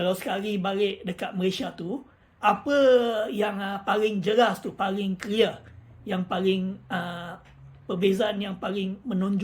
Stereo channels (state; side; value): identical; both; correlation 1.00